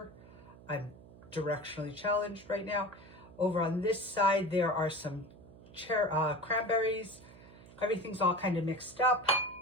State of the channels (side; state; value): right; noise; hum, 20 dB below the sound